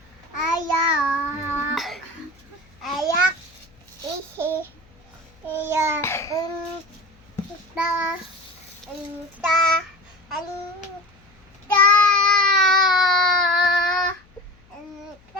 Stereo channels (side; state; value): left; noise; hum, 30 dB below the sound